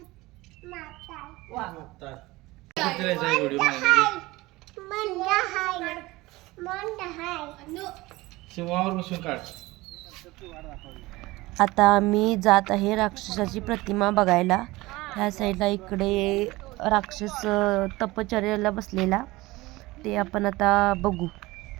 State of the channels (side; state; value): left; quieter; 20.3 dB